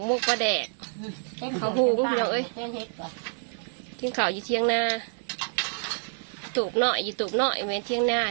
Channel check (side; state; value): left; silent; 58 dB below the other